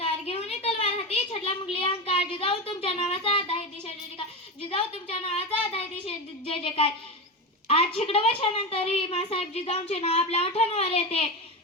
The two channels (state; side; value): normal; both; correlation 0.18